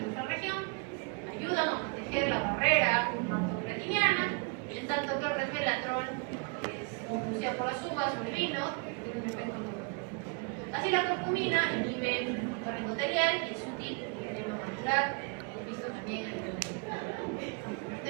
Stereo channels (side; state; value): left; quieter; 33.7 dB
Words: nuestra región, ayudan a proteger la barrera hematocretiniana, en tanto que el resveratrol, que es producido por las uvas o el vino, tiene un efecto neurológico. Así la curcumina inhibe el receptor endotelial y es útil en el edema macular, hemos visto también en el